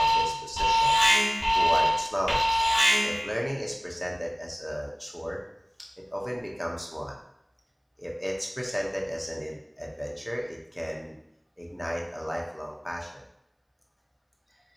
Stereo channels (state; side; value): identical; both; correlation 1.00